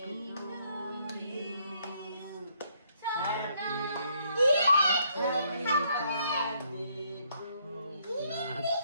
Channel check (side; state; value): both; inverted; correlation -0.70